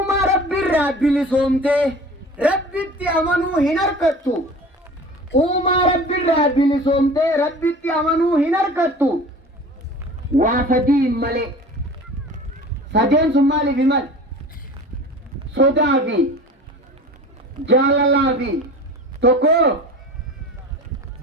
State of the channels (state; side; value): normal; both; correlation 0.39